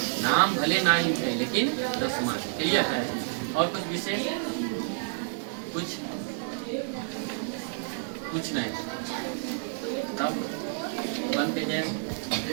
नाम भले ना ही थे लेकिन 10 क्लियर है। और कुछ विशेष कुछ नहीं, तब बनते हैं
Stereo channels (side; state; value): left; silent; 58 dB below the other